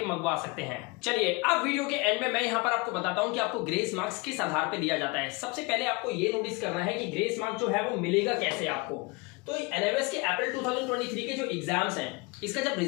मंगवा सकते हैं। चलिए अब वीडियो के एंड में मैं यहाँ पर आपको बताता हूँ कि आपको ग्रेस मार्क्स किस आधार पे दिया जाता है। सबसे पहले आपको ये नोटिस करना है कि ग्रेस मार्क्स जो है वो मिलेगा कैसे आपको। तो एनएमएस के अप्रैल 2023 के जो एग्जाम्स हैं इसका जब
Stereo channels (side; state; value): right; quieter; 26.6 dB